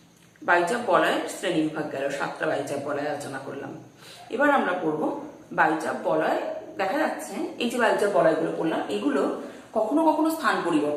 বায়ুচাপ বলয়ের শ্রেণী বিভাগ গেল, 7টা বায়ুচাপ বলয় আলোচনা করলাম। এবার আমরা পড়ব বায়ুচাপ বলয়। দেখা যাচ্ছে এই যে বায়ুচাপ বলয়গুলো পড়লাম, এগুলো কখনো কখনো স্থান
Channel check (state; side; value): identical; both; correlation 1.00